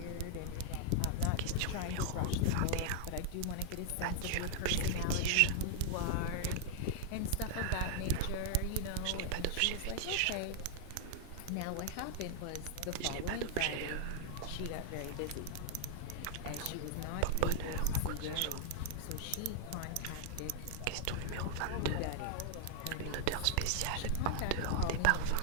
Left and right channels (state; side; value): different; both; correlation 0.00